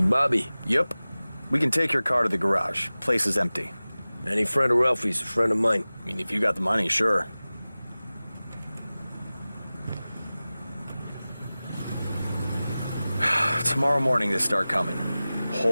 Bobby? Yep. We can take your car to the garage. Place is empty. Any friend of Ralphie's, a friend of mine. I mean, if you got the money, sure. Tomorrow morning they start coming.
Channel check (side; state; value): both; inverted; correlation -0.97